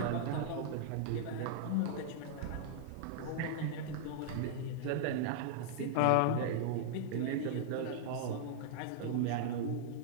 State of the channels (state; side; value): different; both; correlation -0.01